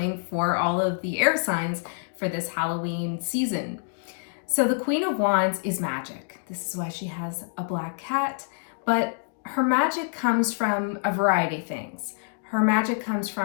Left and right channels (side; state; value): right; silent; digital silence